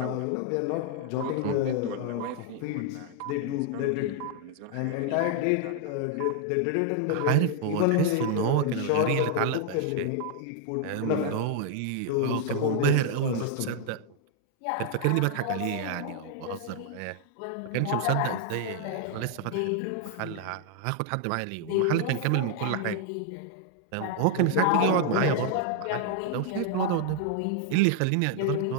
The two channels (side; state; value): both; different; correlation 0.00